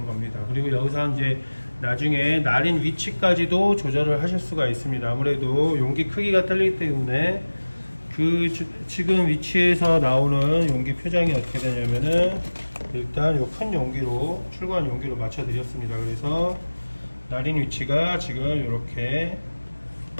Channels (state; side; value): inverted; both; correlation -1.00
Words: 겁니다. 그리고 여기서 이제 나중에 날인 위치까지도 조절을 하실 수가 있습니다. 아무래도 용기 크기가 틀리기 때문에 지금 위치에서 나오는 용기 표장이 어떻게 되냐면은 일단 요 큰 용기로 출고한 용기로 맞춰 드렸습니다. 그래서 날인 위치가 지금 이렇게